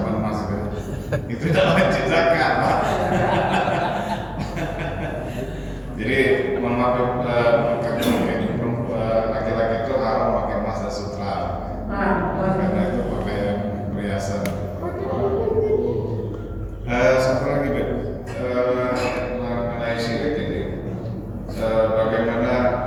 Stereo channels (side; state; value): both; identical; correlation 1.00